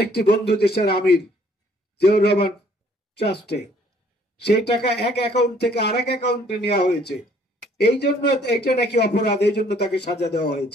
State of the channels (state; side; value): normal; both; correlation 0.61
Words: বন্ধু দেশের আমির জিয়াউর রহমান ট্রাস্টে। সেই টাকা এক অ্যাকাউন্ট থেকে আরেক অ্যাকাউন্টে নেওয়া হয়েছে। এই জন্য এটা নাকি অপরাধ, এই জন্য তাকে সাজা দেওয়া